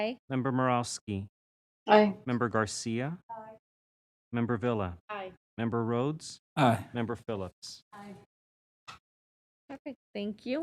Member Morowski, Aye. Member Garcia, Member Villa, Aye. Member Rhodes, Aye. Member Phillips. Aye. Perfect, thank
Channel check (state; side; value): identical; both; correlation 1.00